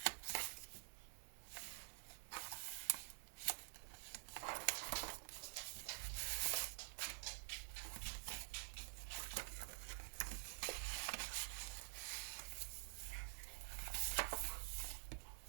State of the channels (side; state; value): left; silent; digital silence